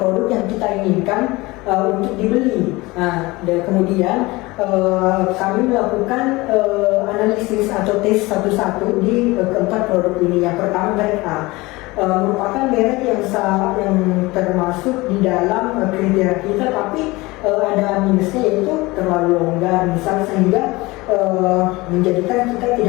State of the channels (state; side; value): quieter; right; 21.9 dB